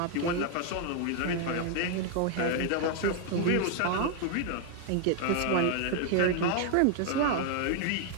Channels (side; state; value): both; different; correlation 0.00